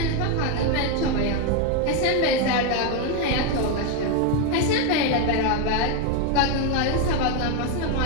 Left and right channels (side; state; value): both; different; correlation 0.02